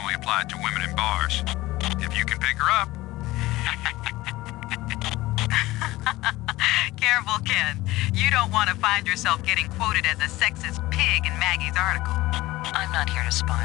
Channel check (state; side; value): quieter; right; 18.5 dB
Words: applied to women in bars. If you can pick her up. Careful, Ken. You don't want to find yourself getting quoted as a sexist pig in Maggie's article. I'm not here to